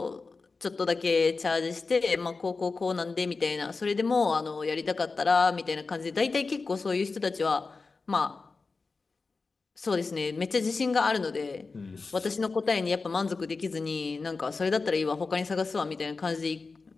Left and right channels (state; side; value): quieter; right; 4.1 dB